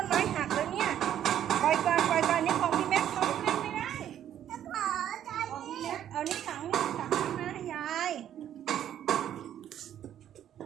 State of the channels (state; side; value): quieter; left; 10.6 dB